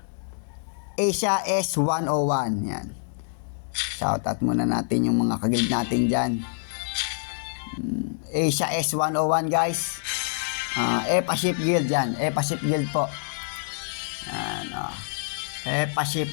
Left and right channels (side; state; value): right; silent; digital silence